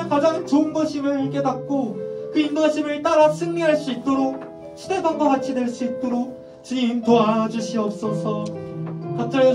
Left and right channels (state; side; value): identical; both; correlation 1.00